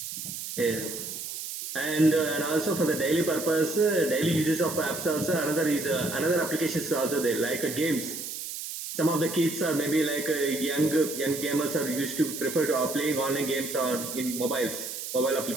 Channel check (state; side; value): noise; right; hiss, 7 dB below the sound